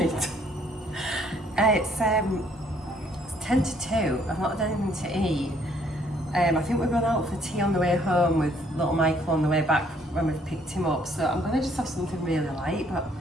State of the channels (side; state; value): both; normal; correlation 0.65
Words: It's 10 to 2. I've not had anything to eat. I think we're going out for tea on the way home with little Michael on the way back when we've picked him up. So I'm going to just have something really light, but